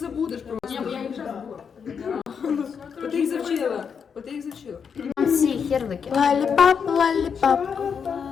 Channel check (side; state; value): right; quieter; 6.6 dB